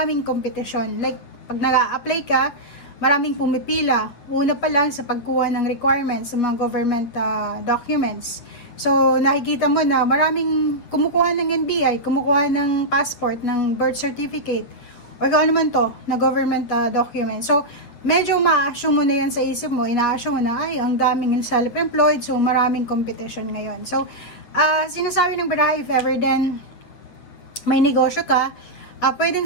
competition. Like, pag nag-a-apply ka, maraming pumipila. Una pa lang sa pagkuha ng requirements sa mga government documents. So, nakikita mo na maraming kumukuha ng NBI, kumukuha ng passport, ng birth certificate, or kung ano man to, na government document. So, medyo ma-assume mo na yan sa isip mo, ina-assume mo na, ay, ang daming self-employed, so maraming competition ngayon. So, sinasabi ng baraha, if ever then may negosyo ka,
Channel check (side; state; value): right; late; 8.7 ms